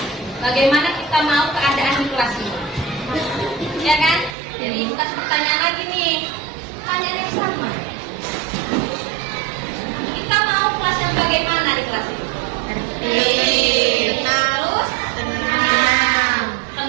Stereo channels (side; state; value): left; drops out; at 4.4 s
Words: bagaimana kita mau keadaan di kelas ini. Ya kan? Jadi bukan pertanyaan lagi nih. Pertanyaan yang sama. Kita mau kelas yang bagaimana di kelas ini? Terus?